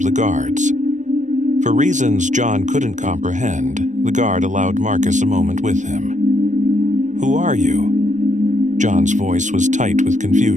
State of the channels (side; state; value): left; late; 0.36 ms